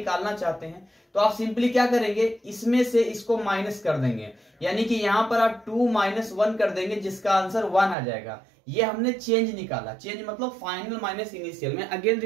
चाहते हैं, तो आप सिंपली क्या करेंगे, इसमें से इसको माइनस कर देंगे। यानी कि यहां पर आप 2 - 1 कर देंगे, जिसका आंसर 1 आ जाएगा। ये हमने चेंज निकाला। चेंज मतलब फाइनल माइनस इनिशियल। मैं अगेन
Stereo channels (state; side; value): drops out; left; at 8.0 s